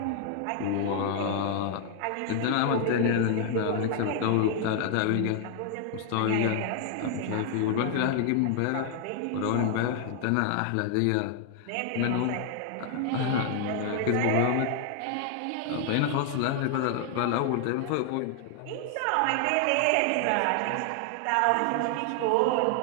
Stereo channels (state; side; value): different; both; correlation 0.00